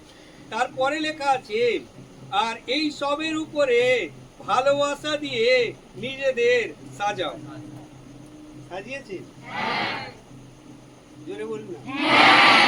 তারপরে লেখা আছে আর এই সবের উপরে ভালোবাসা দিয়ে নিজেদের সাজাও। সাজিয়েছে? জোরে বলুন না।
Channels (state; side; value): identical; both; correlation 1.00